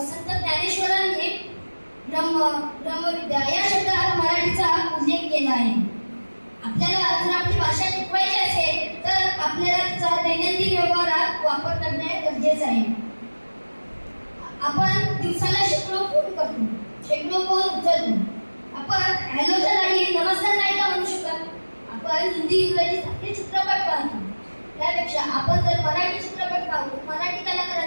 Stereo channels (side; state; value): both; inverted; correlation -1.00